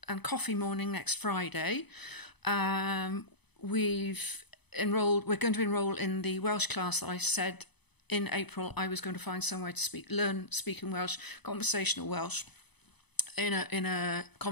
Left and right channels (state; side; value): late; right; 0.99 ms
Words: and coffee morning next Friday. We're going to enrol in the Welsh class that I said in April I was going to find somewhere to learn speaking Welsh, conversational Welsh, in a